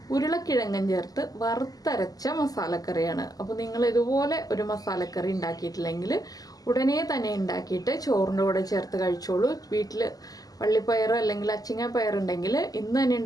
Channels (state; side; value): late; right; 0.18 ms